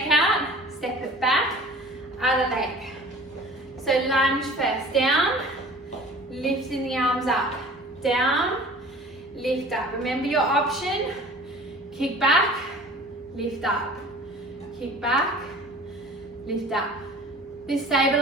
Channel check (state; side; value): normal; both; correlation 0.44